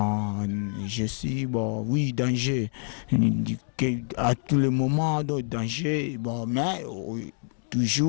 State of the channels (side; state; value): right; silent; 60 dB below the other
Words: je suis, oui, danger, à tout le moment, danger, bon, mais